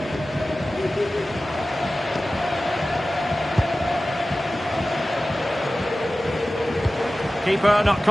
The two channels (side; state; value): both; normal; correlation 0.96